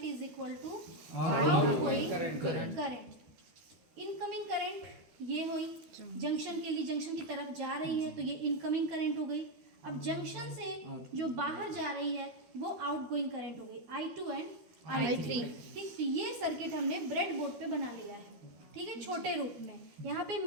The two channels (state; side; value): late; left; 13 ms